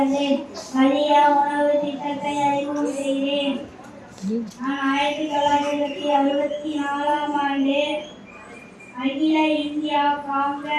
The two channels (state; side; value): identical; both; correlation 1.00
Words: மதிய உணவு திட்டத்தை அறிமுகம் செய்தேன். நான் 1964ஆம் ஆண்டு அகில இந்தியா